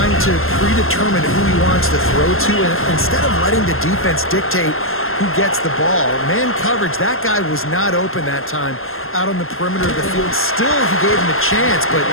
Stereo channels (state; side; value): late; right; 0.61 ms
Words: to predetermine who he wants to throw to, and instead of letting the defense dictate who gets the ball. Man coverage, that guy was not open that time out on the perimeter of the field. Still, he gave him a chance, but